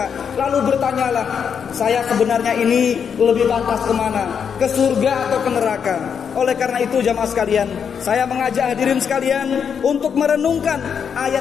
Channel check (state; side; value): quieter; right; 7.1 dB